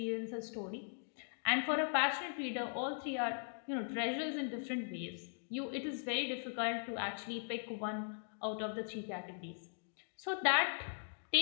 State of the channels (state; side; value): silent; right; digital silence